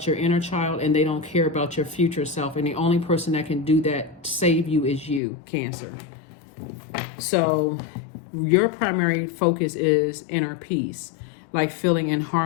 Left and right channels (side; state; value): right; drops out; at 5.2 s